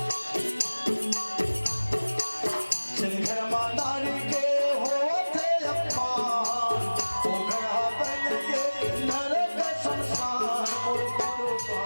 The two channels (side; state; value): both; inverted; correlation -1.00